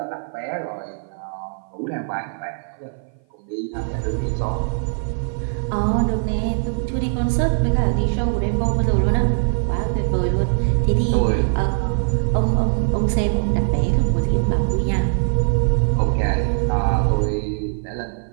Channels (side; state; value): left; silent; 56 dB below the other